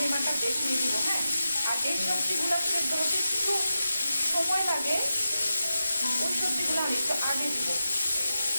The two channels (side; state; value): both; inverted; correlation -0.90